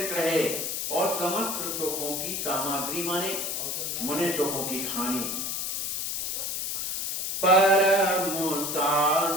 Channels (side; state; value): left; noise; hiss, 2 dB below the sound